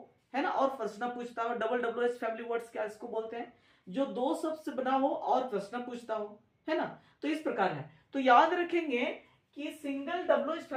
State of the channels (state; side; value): identical; both; correlation 1.00